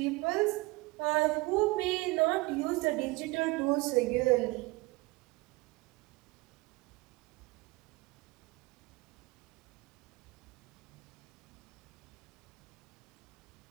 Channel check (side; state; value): left; quieter; 23.1 dB